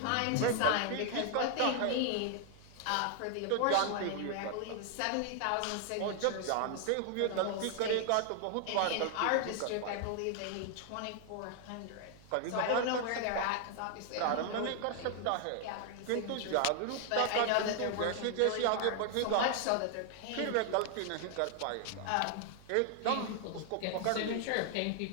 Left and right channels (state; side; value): different; both; correlation 0.00